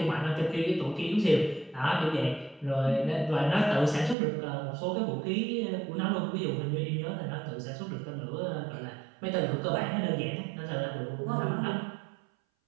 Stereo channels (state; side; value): drops out; left; at 4.2 s